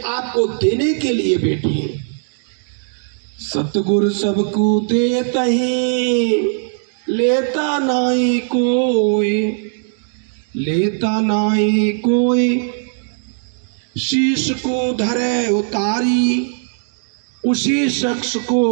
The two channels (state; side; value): silent; left; digital silence